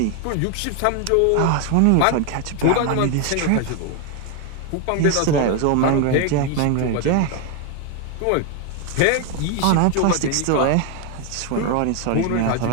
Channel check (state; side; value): different; both; correlation 0.01